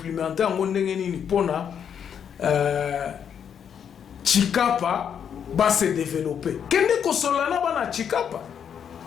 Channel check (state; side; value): quieter; right; 8.1 dB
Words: en ondengeni pona Chikapa va se développer. Kende ko solana bana Chikapa.